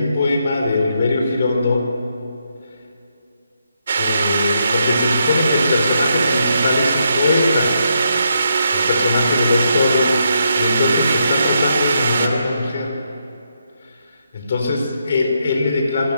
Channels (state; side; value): inverted; both; correlation -0.79